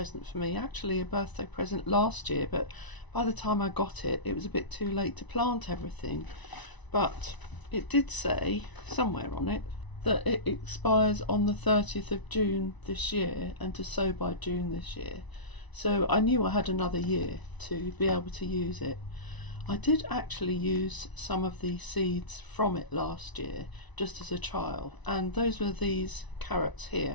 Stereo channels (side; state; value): right; late; 1.0 ms